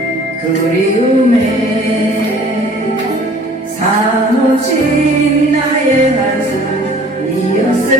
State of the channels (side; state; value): both; normal; correlation 0.51